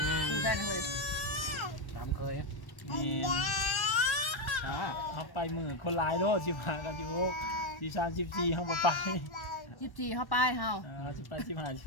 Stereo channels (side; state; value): right; late; 1.1 ms